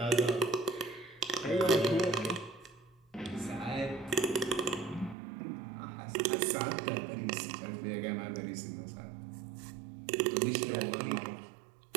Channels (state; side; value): drops out; left; at 5.2 s